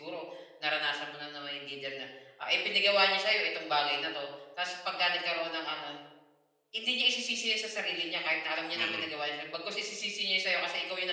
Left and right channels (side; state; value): both; identical; correlation 1.00